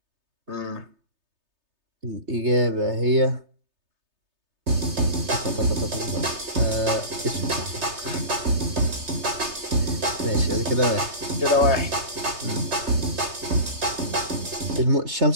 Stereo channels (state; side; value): late; left; 3.3 ms